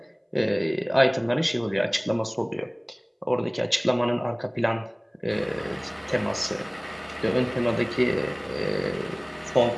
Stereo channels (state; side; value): identical; both; correlation 1.00